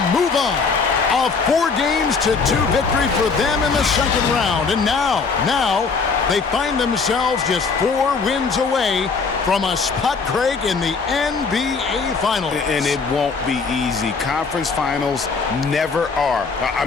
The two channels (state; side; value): quieter; right; 4.9 dB